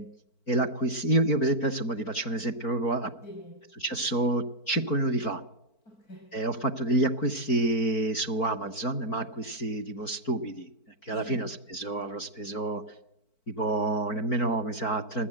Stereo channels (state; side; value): late; right; 4.5 ms